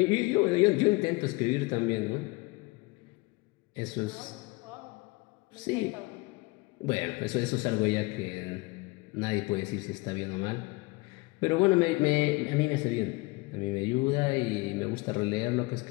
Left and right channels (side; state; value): right; quieter; 24.8 dB